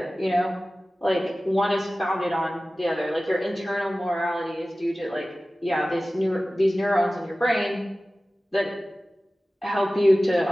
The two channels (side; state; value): both; normal; correlation 0.96